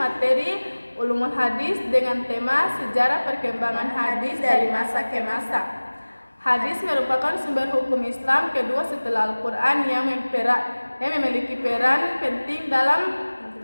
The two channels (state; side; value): inverted; both; correlation -1.00